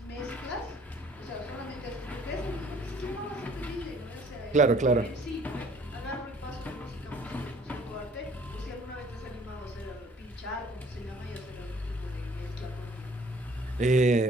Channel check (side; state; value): both; normal; correlation 0.57